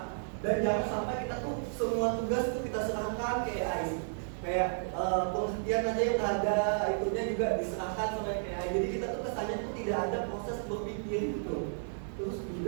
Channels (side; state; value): left; silent; digital silence